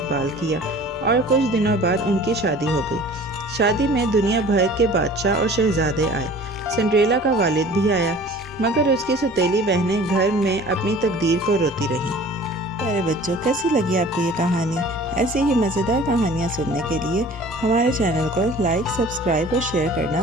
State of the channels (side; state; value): both; normal; correlation 0.46